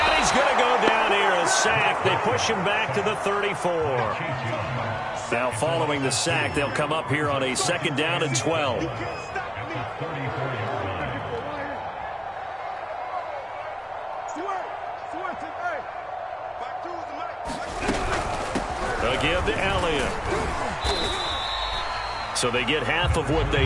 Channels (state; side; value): identical; both; correlation 1.00